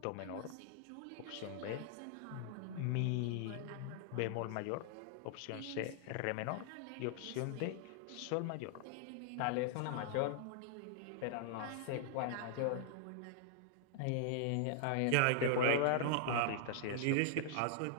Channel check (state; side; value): different; both; correlation -0.01